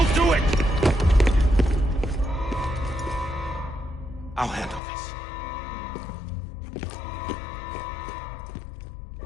do it! I'll handle this.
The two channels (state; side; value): drops out; right; at 4.8 s